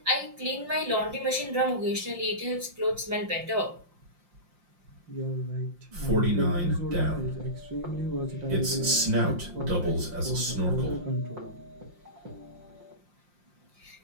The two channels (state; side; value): late; left; 5.7 ms